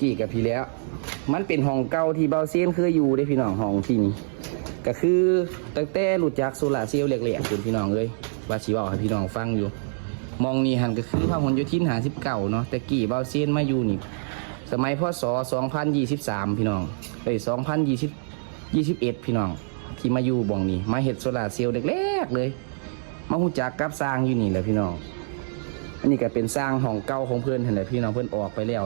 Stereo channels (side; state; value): left; silent; digital silence